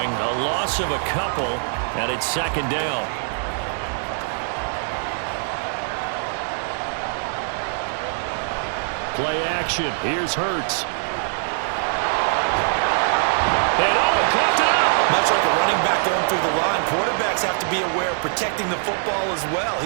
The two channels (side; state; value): left; silent; digital silence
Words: A loss of a couple, and it's second down. Play action. Here's Hurts. And he clocked it up. Much like a running back going through the line, quarterbacks have to be aware of protecting the football as well.